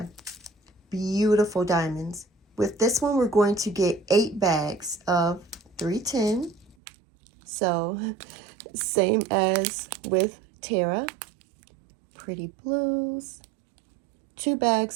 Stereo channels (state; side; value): drops out; left; at 6.8 s